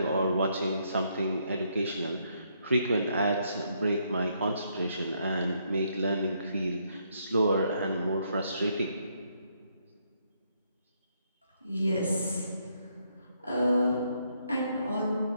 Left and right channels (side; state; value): both; inverted; correlation -0.74